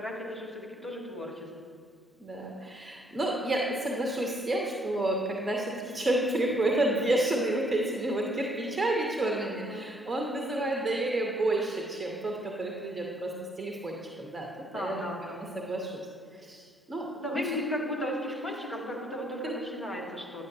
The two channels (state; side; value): normal; both; correlation 0.67